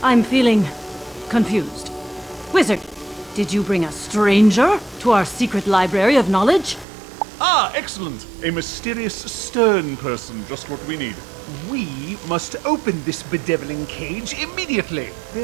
I'm feeling confused. Wizard, did you bring a stranger to our secret library of knowledge? Ah, excellent. A mysterious, stern person, just what we need. We must open this bedeviling cage immediately.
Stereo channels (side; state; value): left; drops out; at 6.9 s